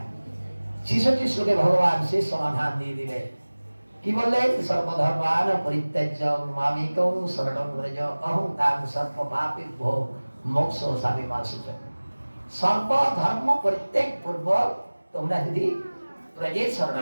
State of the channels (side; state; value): both; inverted; correlation -1.00